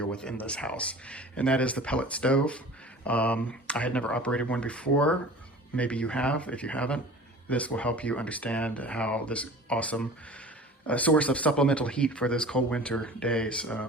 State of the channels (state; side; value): normal; both; correlation 0.41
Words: with in this house, and that is the pellet stove. I had never operated one before. Maybe you have. If you haven't, this will help you understand how this awesome source of supplemental heat for those cold winter days